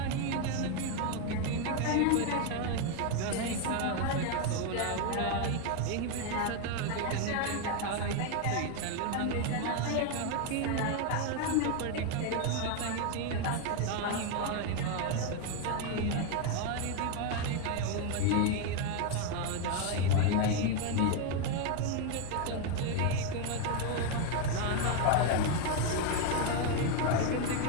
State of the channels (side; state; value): both; different; correlation 0.01